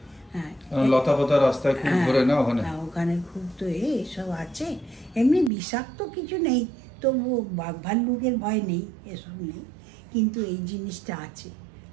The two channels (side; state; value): left; drops out; at 5.5 s